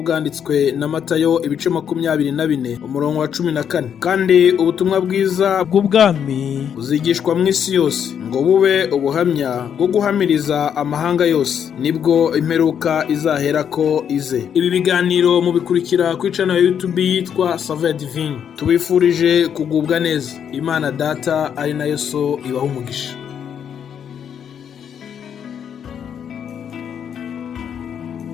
bwanditswe na Matayo ibice 24 umurongo wa 14. Kandi ubutumwa bwiza bw'ubwami buzigishwa mu isi yose ngo bube ubuhamya bwo guhamiriza amahanga yose, nibwo imperuka izahera ko ize. Ibi biganiro mubikurikira ku channel ya YouTube yitwa Saveur Divine. Tubifurije kugubwa neza. Imana Data ari nayo So ibaha umugisha.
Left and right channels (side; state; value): right; quieter; 8.3 dB